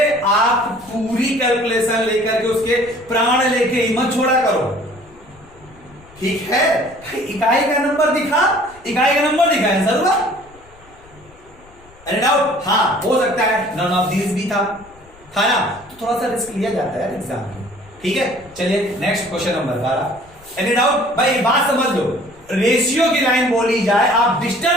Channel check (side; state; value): left; noise; rumble, 25 dB below the sound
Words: आप पूरी कैलकुलेशन लेकर के उसके प्राण लेके हिम्मत छोड़ा करो, ठीक है? इकाई का नंबर दिखा, इकाई का नंबर दिखा आंसर हुआ। Any doubt? हाँ हो सकता है नन ऑफ दीज भी था ना, तो थोड़ा सा रिस्क लिया जाता है एग्जाम में। ठीक है, चलिए next question number 12। Any doubt? भाई बात समझ लो, रेशियो की लाइन बोली जाए, आप